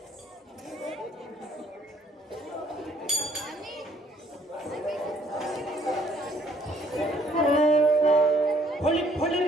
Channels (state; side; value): normal; both; correlation 0.63